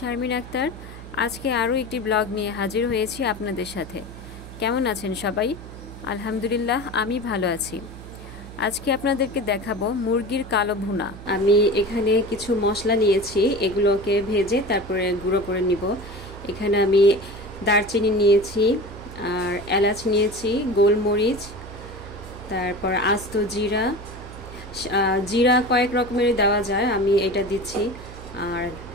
আক্তার। আজকে আরও একটি ব্লগ নিয়ে হাজির হয়েছি আপনাদের সাথে। কেমন আছেন সবাই? আলহামদুলিল্লাহ, আমি ভালো আছি। আজকে আপনাদেরকে দেখাবো মুরগির কালো ভুনা। আমি এখানে কিছু মশলা নিয়েছি, এগুলোকে ভেজে তারপরে গুঁড়ো করে নিব। এখানে আমি দারচিনি নিয়েছি, আর এলাচ নিয়েছি, গোলমরিচ, তারপর আস্ত জিরা। জিরা কয়েক রকমের দেওয়া যায়, আমি এটা দিচ্ছি। আর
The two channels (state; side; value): noise; right; hum, 14 dB below the sound